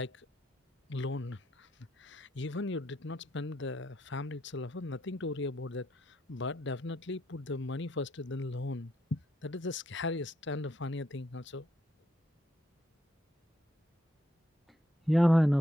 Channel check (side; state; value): both; normal; correlation 0.76